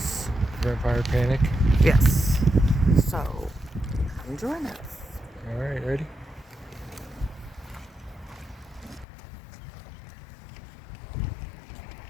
Vampire Panic. Yes. So, come join us. Alright, ready?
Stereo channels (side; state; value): right; drops out; at 9.1 s